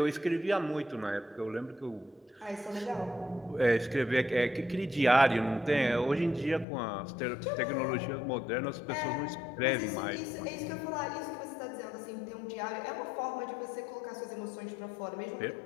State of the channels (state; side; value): drops out; right; at 6.7 s